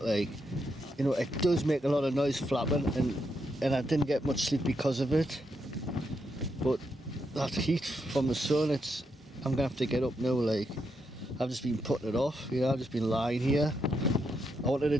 like. You know, it does make a lot of noise flapping, and I didn't get much sleep because of it. But that heat from the sun, I'm gonna have to get up now, like. I've just been putting it off, you know, I've just been lying here. I wanted to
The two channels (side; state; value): both; normal; correlation 0.81